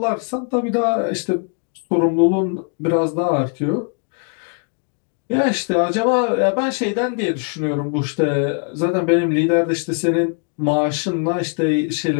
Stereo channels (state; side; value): quieter; right; 38.4 dB